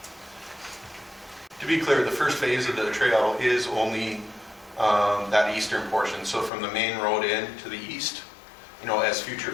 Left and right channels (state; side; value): drops out; right; at 6.5 s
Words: To be clear, the first phase of the trail is only that eastern portion. So from the main road in to the east, as future